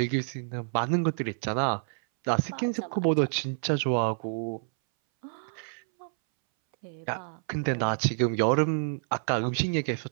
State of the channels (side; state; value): left; silent; 59 dB below the other